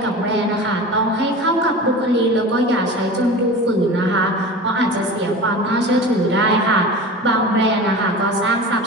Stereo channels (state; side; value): normal; both; correlation 0.33